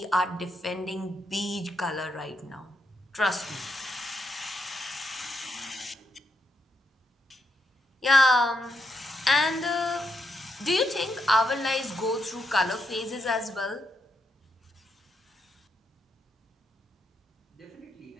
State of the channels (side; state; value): both; normal; correlation 0.80